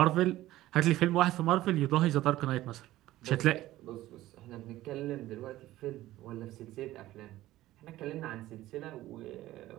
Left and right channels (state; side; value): quieter; left; 15.7 dB